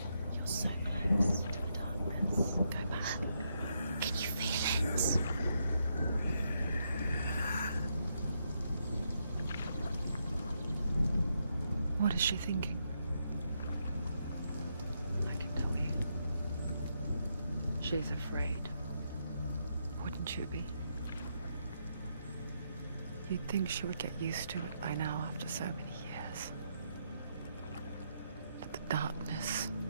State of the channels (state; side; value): inverted; both; correlation -0.79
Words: You're so close to the darkness. Go back. Can you feel it? What is she thinking? I can tell you. She's afraid. Wouldn't you be? You'd think she would get used to it by now after so many years. But the darkness,